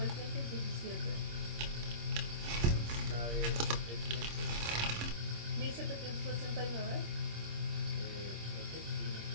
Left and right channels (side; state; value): left; late; 26 ms